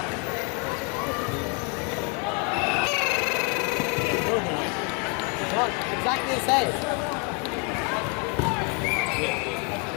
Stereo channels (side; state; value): right; quieter; 35.0 dB